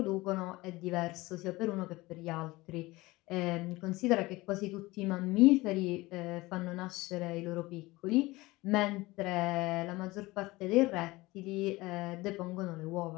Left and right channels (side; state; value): right; quieter; 20.7 dB